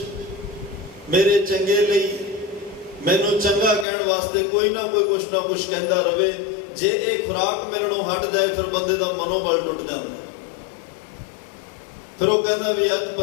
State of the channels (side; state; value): right; drops out; at 3.9 s